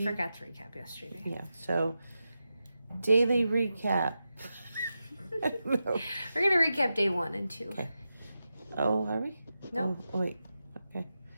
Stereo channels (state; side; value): inverted; both; correlation -0.90